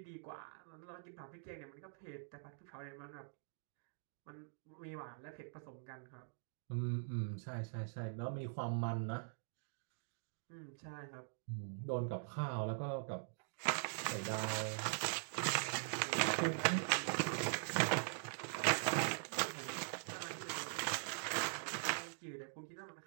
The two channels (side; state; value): left; silent; digital silence